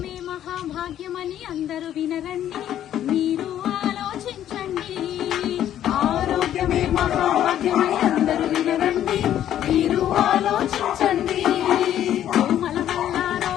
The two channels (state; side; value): quieter; right; 11.2 dB